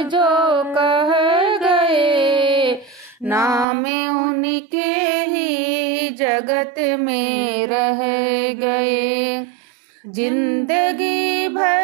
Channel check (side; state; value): left; drops out; at 3.7 s